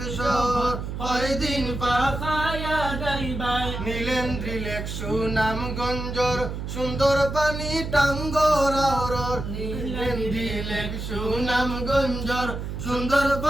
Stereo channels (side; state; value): right; noise; hum, 6 dB below the sound